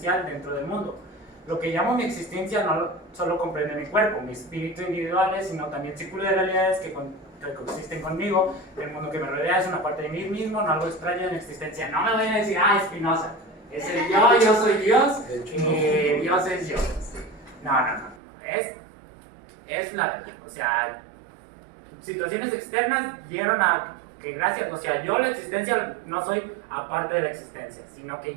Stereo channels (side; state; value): left; drops out; at 18.2 s